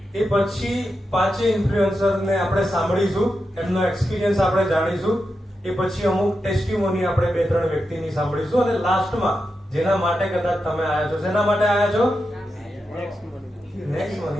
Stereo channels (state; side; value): normal; both; correlation 0.88